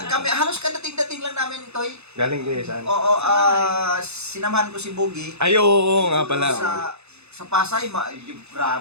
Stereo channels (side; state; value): left; late; 0.81 ms